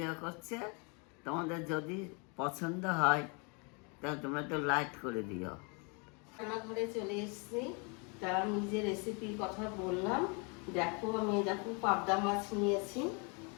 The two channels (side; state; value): right; quieter; 33.5 dB